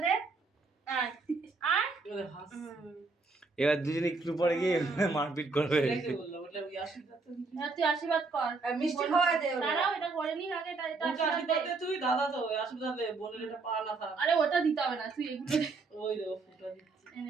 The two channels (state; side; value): quieter; left; 4.0 dB